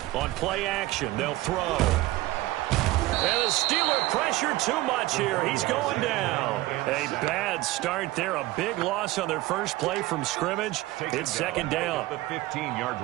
On play action, they'll throw. And the Steeler pressure too much here. He's going down. A bad start there. A big loss on their first play from scrimmage. It's second down. The 15-yard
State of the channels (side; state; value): left; quieter; 18.0 dB